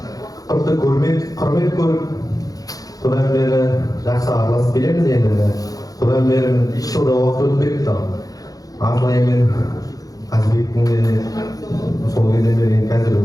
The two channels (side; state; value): right; late; 0.18 ms